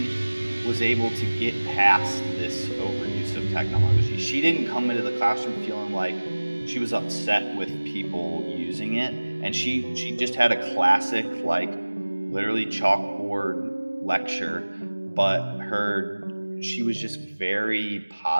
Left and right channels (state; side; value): inverted; both; correlation -1.00